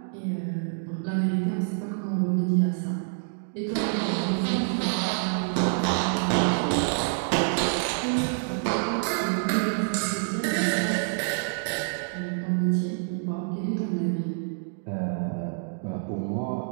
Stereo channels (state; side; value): silent; left; digital silence